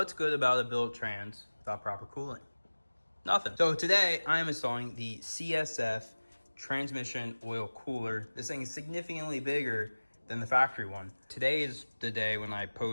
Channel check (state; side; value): inverted; both; correlation -1.00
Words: good about a built trans without proper cooling? Nothing. So today I am installing the CSF Transmission Oil Cooler. This thing is significantly bigger than the factory one. Today is the day when I